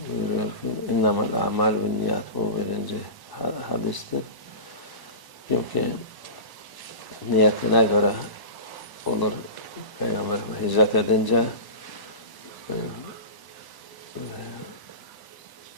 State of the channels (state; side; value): late; right; 1.0 ms